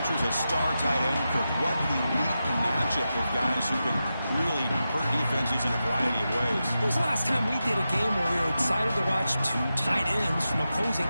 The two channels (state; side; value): inverted; both; correlation -0.91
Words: a star tight end. What an elite matchup of guys who can really hurt defenses in a variety of ways. When was the last time we did a game where we were excited to watch two tight ends from opposing